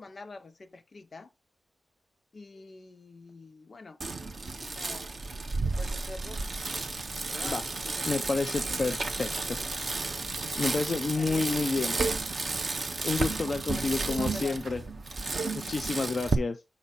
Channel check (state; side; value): normal; both; correlation 0.89